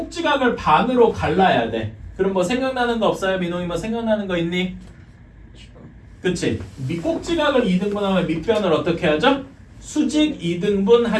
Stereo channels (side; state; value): both; identical; correlation 1.00